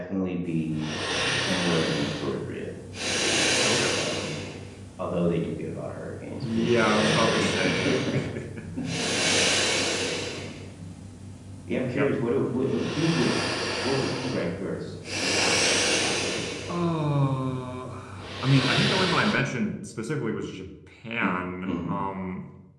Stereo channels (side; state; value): both; identical; correlation 1.00